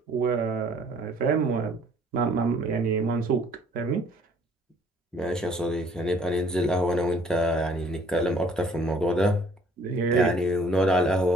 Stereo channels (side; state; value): both; normal; correlation 0.58